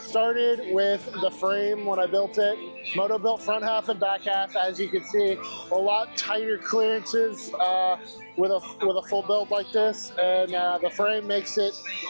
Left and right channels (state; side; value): inverted; both; correlation -1.00